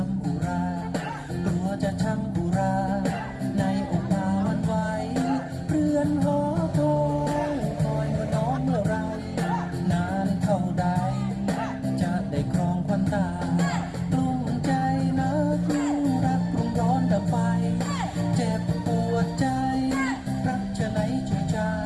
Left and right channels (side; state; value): both; identical; correlation 1.00